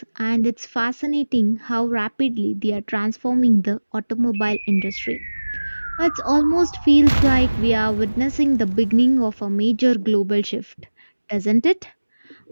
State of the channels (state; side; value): inverted; both; correlation -1.00